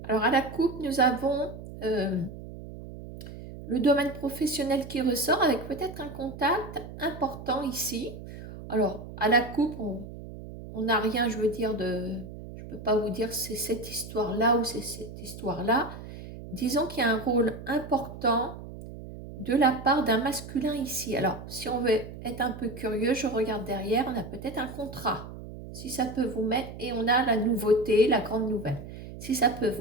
Alors, à la coupe, nous avons le domaine professionnel qui ressort avec peut-être un contact important ici. Alors, à la coupe, on n'a rien, je veux dire, je ne peux pas vous dire c'est cette histoire-là ou c'est cette histoire-là. Disons qu'il y a un rôle important de la part d'un masculin ici. Alors, si on veut être un peu curieux, je regarde derrière, on a peut-être un contrat. Si ça peut vous mettre, et on a la nouveauté, la grande nouvelle. Si ça peut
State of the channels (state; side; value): noise; right; hum, 12 dB below the sound